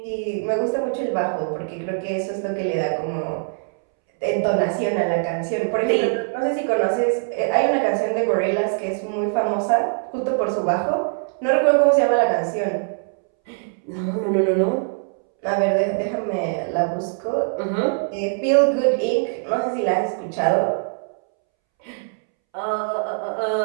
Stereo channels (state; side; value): silent; left; 64 dB below the other